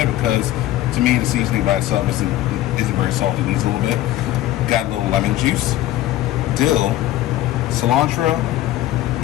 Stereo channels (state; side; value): quieter; right; 14.7 dB